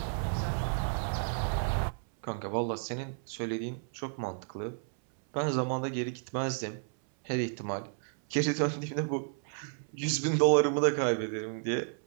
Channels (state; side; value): silent; left; 56 dB below the other